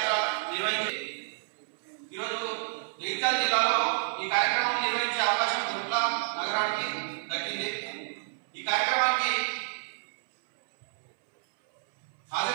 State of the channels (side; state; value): left; silent; 58 dB below the other